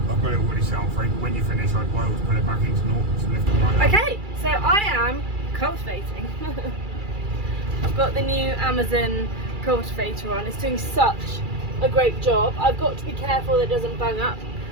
I've got it already set on free, but when you finish, I'd always put it back into naught to lift it right up. Okay, so I am cultivating. I've got the new Amazon cultivator on. It's doing such a great job. I've got to be careful that it doesn't bung up,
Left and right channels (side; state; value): left; late; 2.4 ms